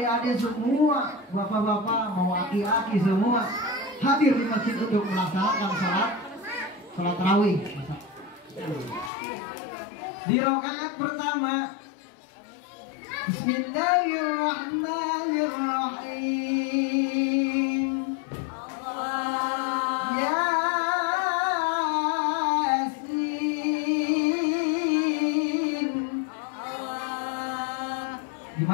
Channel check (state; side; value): drops out; right; at 9.1 s